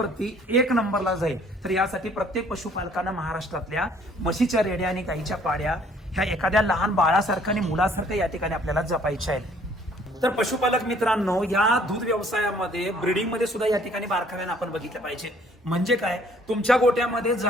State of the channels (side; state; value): both; normal; correlation 0.59